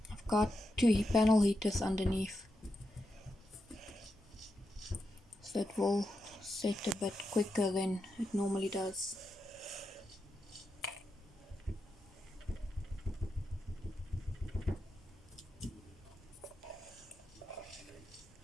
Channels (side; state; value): both; normal; correlation 0.87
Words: got 2 panel heaters underneath, so it will set a bit quicker than it normally does.